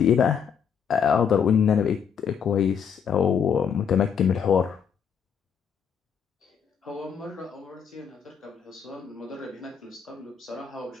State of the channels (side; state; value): right; quieter; 7.3 dB